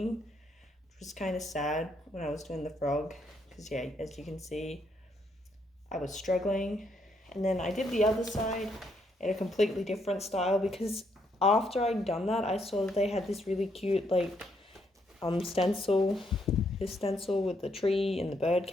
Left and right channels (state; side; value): normal; both; correlation 0.74